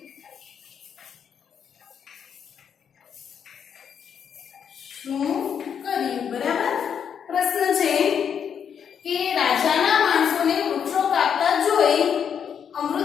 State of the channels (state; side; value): quieter; right; 7.8 dB